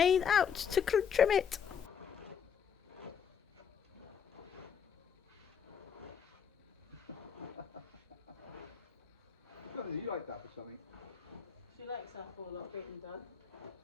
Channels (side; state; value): right; quieter; 7.4 dB